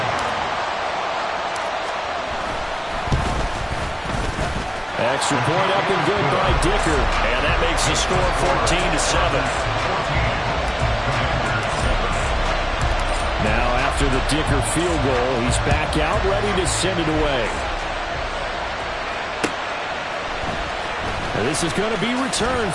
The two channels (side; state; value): both; identical; correlation 1.00